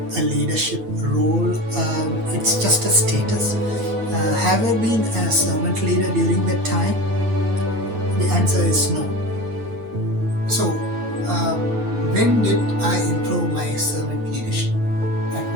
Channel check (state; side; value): late; left; 9.5 ms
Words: a leadership role. It's just a status. Have I been a servant leader during that time? The answer is no. So, when did I improve my servant leadership? At